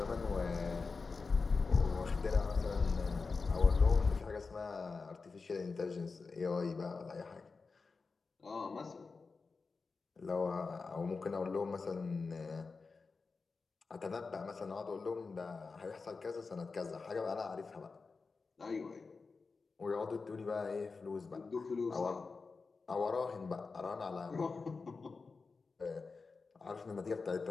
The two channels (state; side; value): quieter; right; 4.4 dB